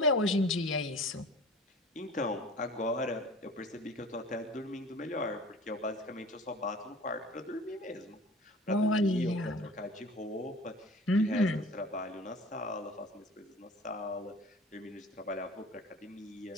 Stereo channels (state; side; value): normal; both; correlation 0.42